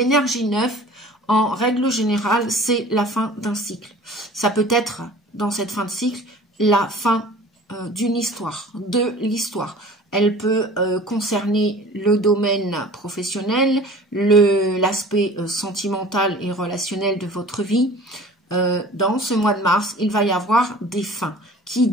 9, en règle générale, c'est la fin d'un cycle. Ça peut être, dans cette fin de cycle, la fin d'une histoire, de l'histoire. Elle peut concerner le domaine professionnel, l'aspect sentimental et relationnel de votre vie. Dans ce mois de mars, il va y avoir des fins. Qui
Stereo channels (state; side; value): normal; both; correlation 0.44